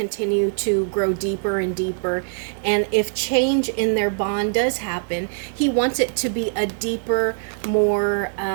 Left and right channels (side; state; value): left; silent; digital silence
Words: to grow deeper and deeper, and if change in their bond does happen, he wants it to be a deeper, more